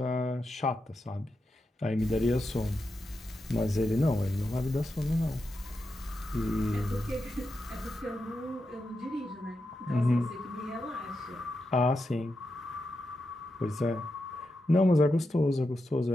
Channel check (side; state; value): both; normal; correlation 0.88